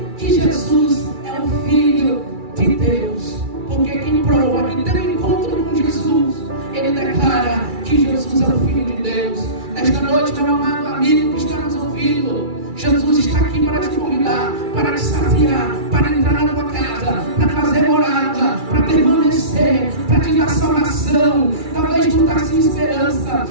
que Jesus é o Filho de Deus. Porque quem prova que tem um encontro com Jesus, ele declara que Jesus é o Filho de Deus. Nesta noite, meu amado amigo que está nos ouvindo, Jesus está aqui para te convidar, para te saciar, para entrar na tua casa, para fazer morada, para permanecer, para te dar salvação. Talvez tu está sem esperança,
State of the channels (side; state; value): left; late; 2.3 ms